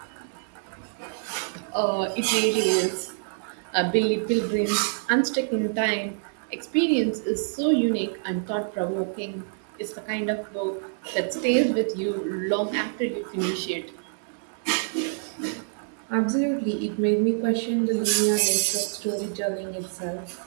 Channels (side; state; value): left; silent; 61 dB below the other